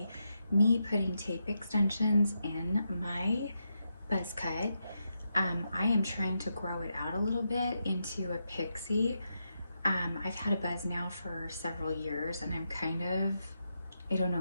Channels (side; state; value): both; inverted; correlation -0.84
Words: me putting tape extensions in my buzz cut. I am trying to grow it out a little bit into a pixie. I've had a buzz now for several years and I don't know